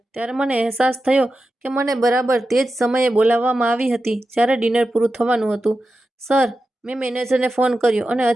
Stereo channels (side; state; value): both; normal; correlation 0.91